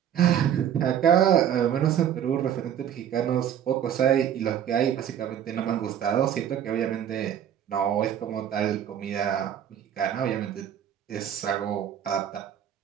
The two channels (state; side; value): quieter; left; 9.7 dB